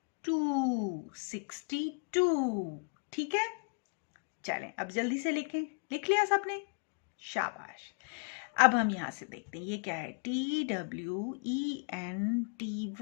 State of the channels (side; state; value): right; quieter; 39.9 dB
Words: 262, ठीक है। चलें अब जल्दी से लिखें, लिख लिया सबने, शाबाश। अब हम यहां से देखते हैं ये क्या है, TWENTY